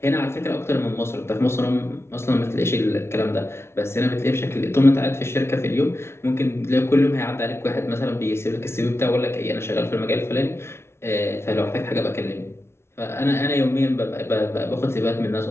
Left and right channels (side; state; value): right; late; 0.12 ms